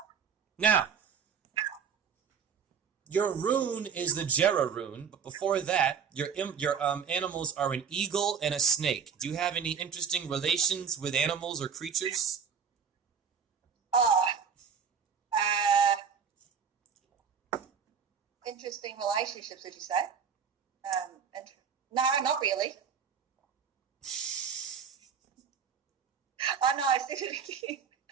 Now, your rune is the Jera rune, but before that, your animals are an eagle and a snake. Do you have any interesting relations with animals or creatures? Interesting relationships, did you say? No, not really. Oh no, I said it again.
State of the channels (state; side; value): quieter; left; 6.8 dB